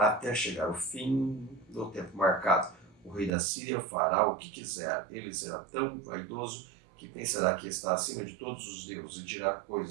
chegar o fim do tempo marcado. O rei da Síria fará o que quiser. Ele será tão vaidoso que pensará que está acima de todos os deuses e dirá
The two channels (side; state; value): left; drops out; at 3.3 s